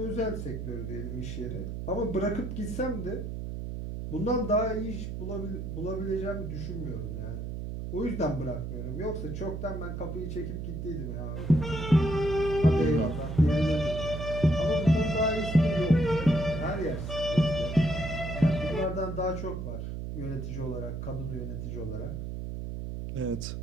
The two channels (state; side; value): noise; right; hum, 5 dB below the sound